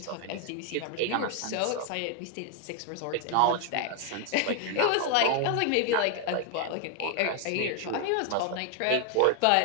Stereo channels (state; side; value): different; both; correlation 0.00